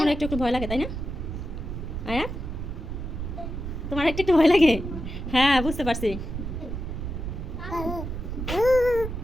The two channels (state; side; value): noise; right; rumble, 6 dB below the sound